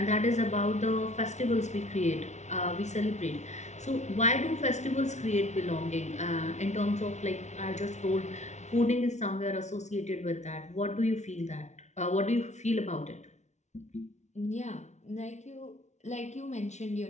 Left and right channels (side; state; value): right; late; 0.33 ms